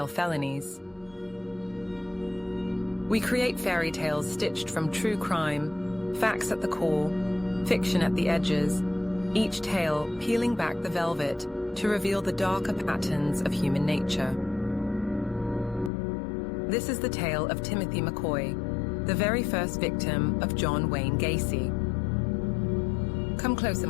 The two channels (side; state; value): right; drops out; at 15.9 s